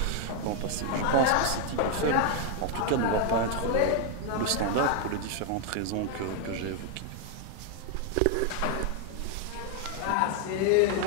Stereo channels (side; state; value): both; different; correlation 0.00